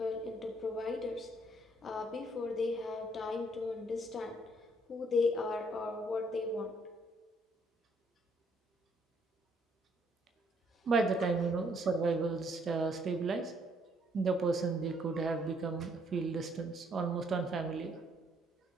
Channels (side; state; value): both; normal; correlation 0.68